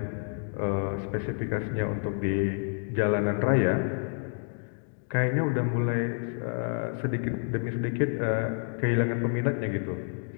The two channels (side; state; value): right; silent; 56 dB below the other